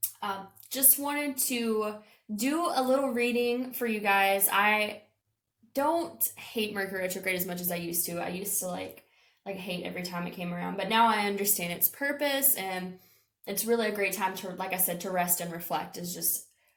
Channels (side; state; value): both; identical; correlation 1.00